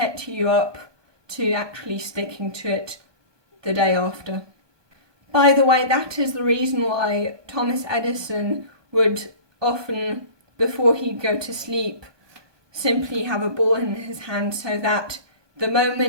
you up to actually sticking to it the day after. By the way, that is the reason why Thomas Edison would often, before he'd go to sleep, simply have a ball in his hand, so that the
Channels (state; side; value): late; left; 1.2 ms